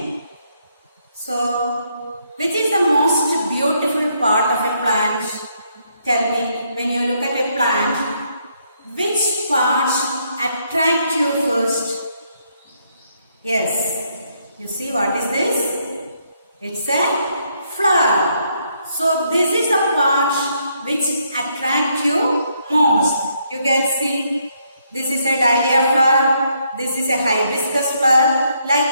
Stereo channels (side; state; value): both; inverted; correlation -0.73